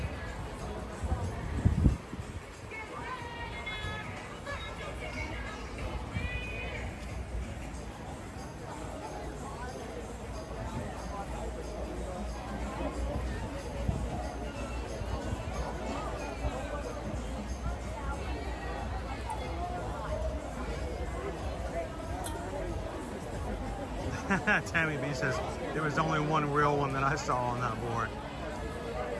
Tammy B says, there was only one real one that I saw on that board.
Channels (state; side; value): identical; both; correlation 1.00